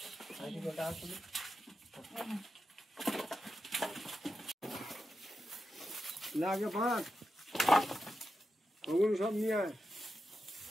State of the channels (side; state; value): both; normal; correlation 0.89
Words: না আগে ভাত ওগুলো সব নিয়ে আয়।